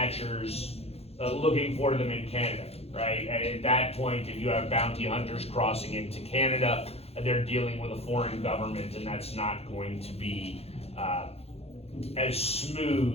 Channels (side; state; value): right; late; 0.29 ms